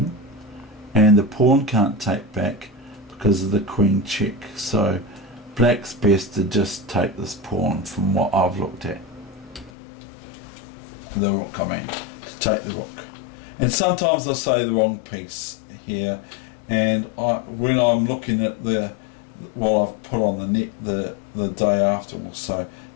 and the pawn can't take back because of the queen check. So black's best to just take this pawn, from what I've looked at. The rook, I mean, to take the rook. And sometimes I say the wrong piece here, and when I'm looking at what I've put on the net the day after or so,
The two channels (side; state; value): right; drops out; at 9.7 s